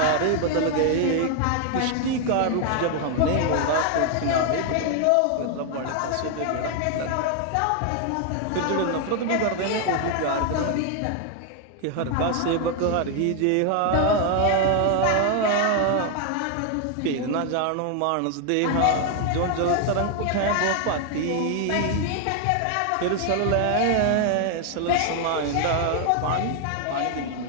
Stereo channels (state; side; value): different; both; correlation 0.00